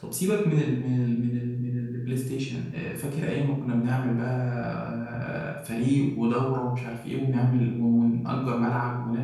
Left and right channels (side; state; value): both; identical; correlation 1.00